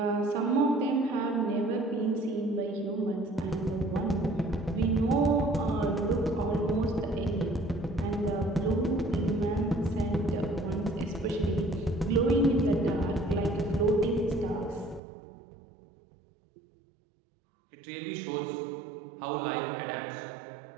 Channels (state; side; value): drops out; left; at 15.0 s